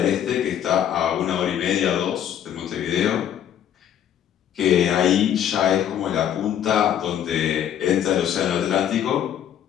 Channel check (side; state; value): right; quieter; 10.0 dB